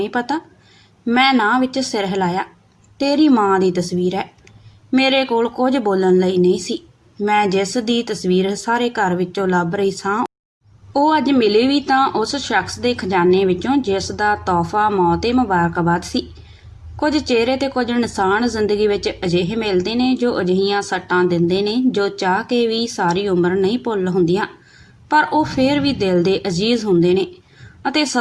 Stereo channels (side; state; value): both; identical; correlation 1.00